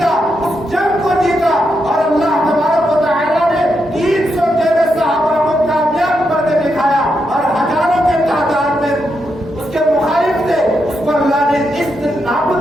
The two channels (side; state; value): both; normal; correlation 0.83